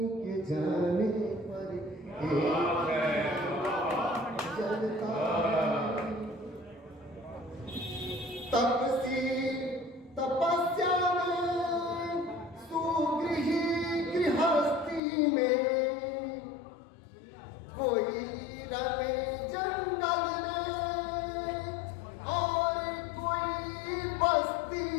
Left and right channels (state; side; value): drops out; right; at 15.0 s